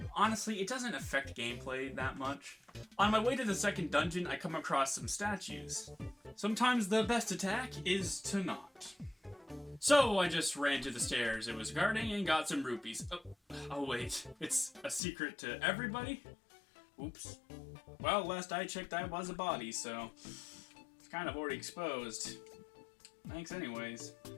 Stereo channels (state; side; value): drops out; right; at 15.0 s